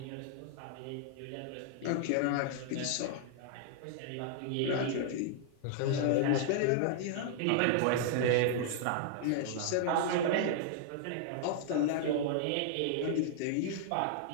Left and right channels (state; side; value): different; both; correlation -0.01